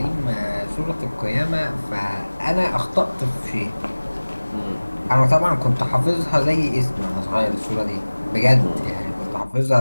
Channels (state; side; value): inverted; both; correlation -1.00